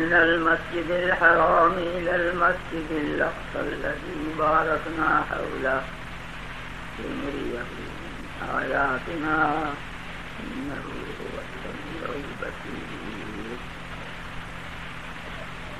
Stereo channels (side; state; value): both; identical; correlation 1.00